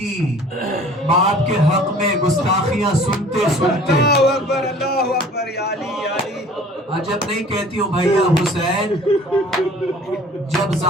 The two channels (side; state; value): both; normal; correlation 0.49